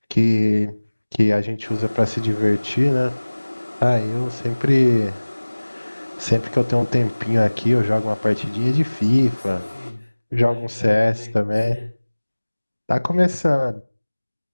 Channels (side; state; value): both; inverted; correlation -1.00